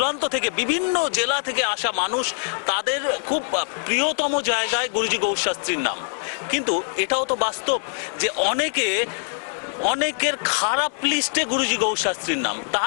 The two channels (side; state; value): right; silent; 62 dB below the other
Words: থেকে বিভিন্ন জেলা থেকে আসা মানুষ, তাদের খুব প্রিয়তম জায়গায় গুরুজি গৌর শাস্ত্রীর নাম, কিন্তু এটাও তো বাস্তব যে অনেকের খারাপ লিস্টে গুরুজি গৌর শাস্ত্রীর নাম।